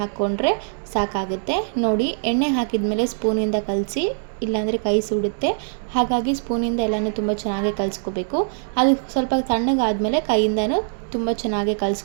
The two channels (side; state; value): left; silent; digital silence